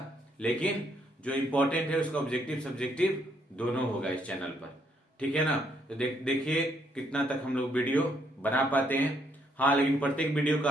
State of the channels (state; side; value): normal; both; correlation 0.71